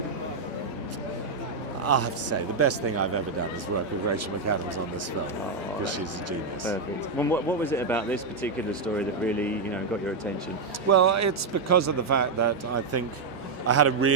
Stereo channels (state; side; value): quieter; left; 4.1 dB